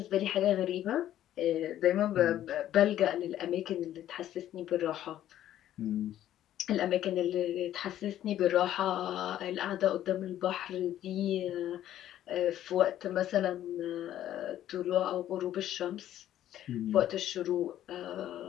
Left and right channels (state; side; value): quieter; right; 12.2 dB